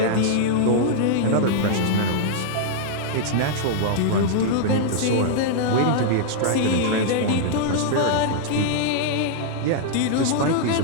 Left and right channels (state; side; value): different; both; correlation -0.01